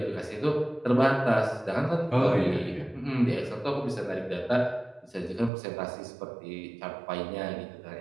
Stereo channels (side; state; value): left; drops out; at 5.5 s